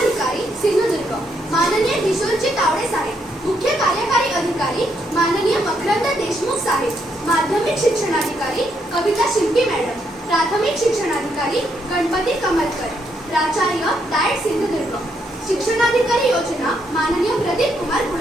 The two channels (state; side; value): normal; both; correlation 0.76